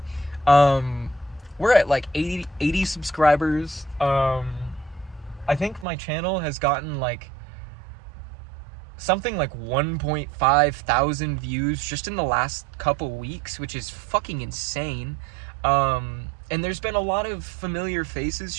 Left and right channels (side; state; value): left; drops out; at 5.9 s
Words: We're at like 80 subscribers. I think my channel has gotten like something like 1.5 thousand views just in the last couple weeks, which is fucking insane. And there's been a lot of familiar faces